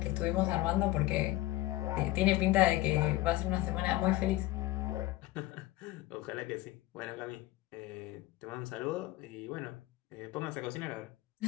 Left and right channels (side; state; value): right; quieter; 17.3 dB